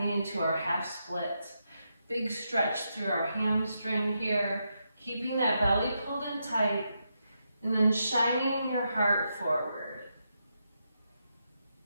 to our half split. Big stretch through our hamstring here, keeping that belly pulled in tight, and then shining your heart forward.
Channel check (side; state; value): both; inverted; correlation -0.84